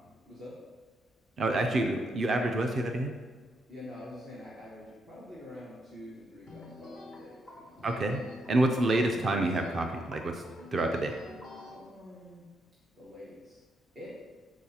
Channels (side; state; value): both; normal; correlation 0.80